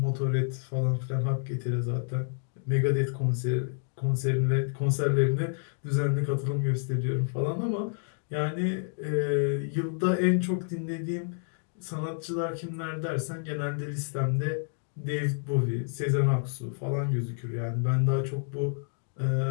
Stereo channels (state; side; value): silent; right; digital silence